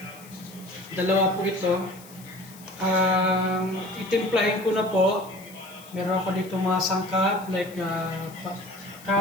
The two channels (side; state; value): left; noise; hiss, 21 dB below the sound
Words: Dalawa po ito. Itimplahin ko na po. Meron ako dito mga sangkap like